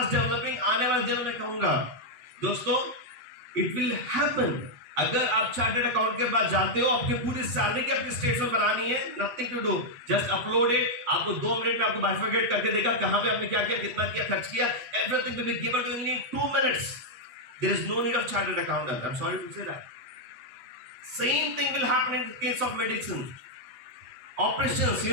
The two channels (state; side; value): late; left; 8.5 ms